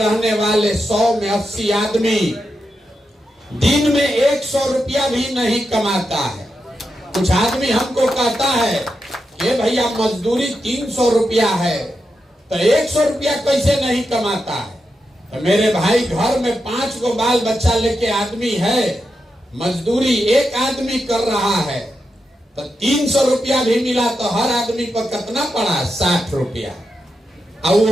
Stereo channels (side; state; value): both; normal; correlation 0.87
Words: वाले 100 में 80 आदमी दिन में 100 रुपया भी नहीं कमाता है। कुछ आदमी हमको कहता है कि भैया मजदूरी 300 रुपया है, तो 100 रुपया कैसे नहीं कमाता है? तो मेरे भाई, घर में 5 को बाल बच्चा लेके आदमी है, मजदूरी एक आदमी कर रहा है, तो 300 रुपया भी मिला तो हर आदमी पर कितना पड़ा? 60 रुपया। और